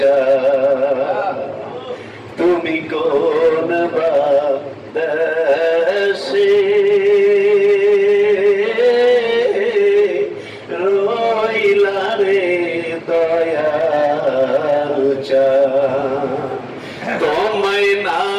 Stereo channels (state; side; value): identical; both; correlation 1.00